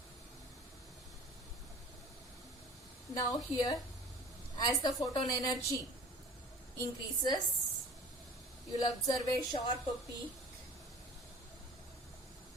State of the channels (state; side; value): normal; both; correlation 0.46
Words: Now here, as the photon energy increases, you will observe a sharp peak,